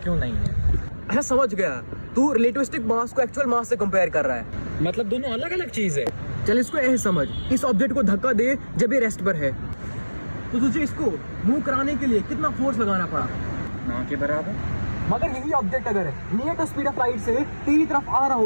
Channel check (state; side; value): inverted; both; correlation -1.00